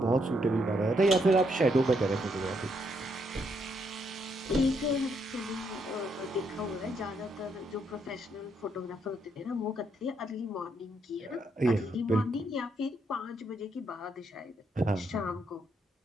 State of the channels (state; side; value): normal; both; correlation 0.75